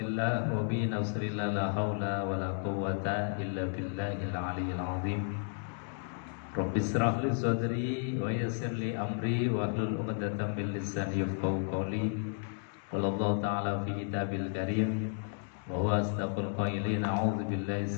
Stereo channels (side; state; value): right; silent; 56 dB below the other